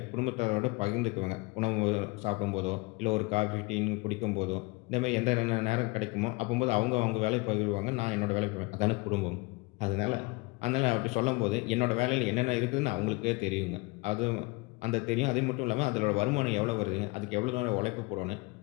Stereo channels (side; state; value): right; quieter; 25.5 dB